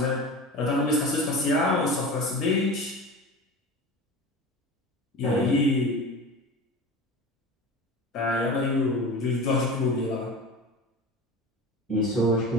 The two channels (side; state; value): both; normal; correlation 0.32